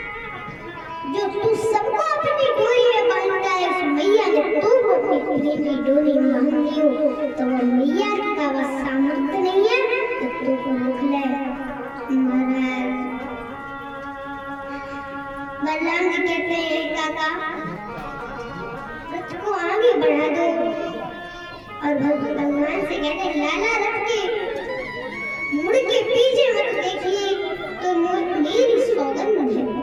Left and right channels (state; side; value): identical; both; correlation 1.00